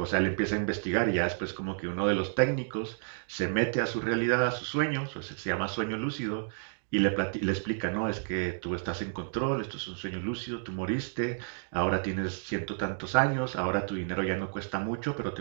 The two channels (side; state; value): left; silent; digital silence